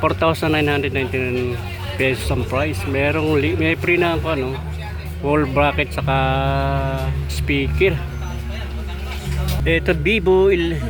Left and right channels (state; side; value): identical; both; correlation 1.00